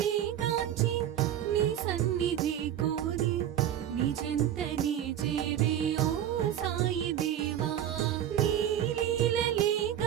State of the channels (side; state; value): left; quieter; 10.7 dB